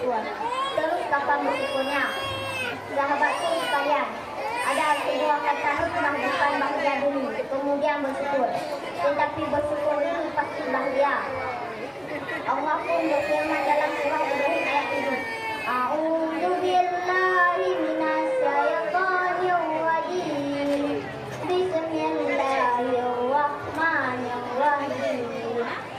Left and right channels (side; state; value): both; identical; correlation 1.00